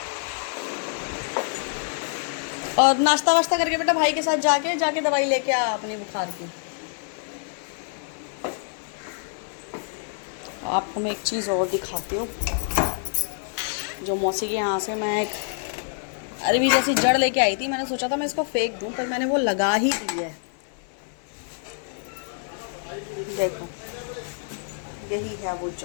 और नाश्ता वाश्ता करके बेटा भाई के साथ जाके दवाई लेके आ अपनी बुखार की। आपको मैं एक चीज़ और दिखाती हूँ, जो मौसी के यहाँ से मैं एक अरबी जैसी जड़ लेके आई थी। मैंने सोचा था मैं इसको फेंक दूँ, पर मैंने वो लगा ही दी है। देखो, यही है वो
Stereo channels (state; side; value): silent; right; 61 dB below the other